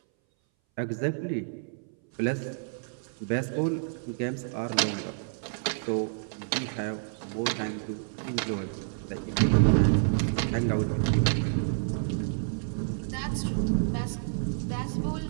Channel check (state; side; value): silent; left; 59 dB below the other